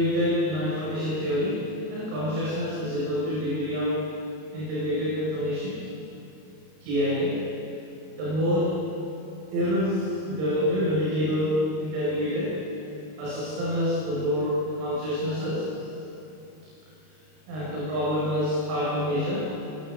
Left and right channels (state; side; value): late; left; 32 ms